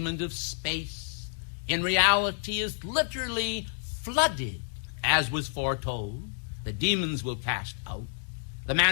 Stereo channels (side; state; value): right; silent; digital silence